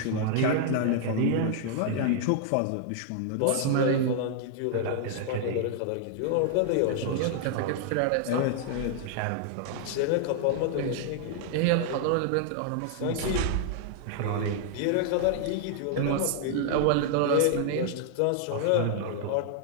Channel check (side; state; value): both; different; correlation -0.01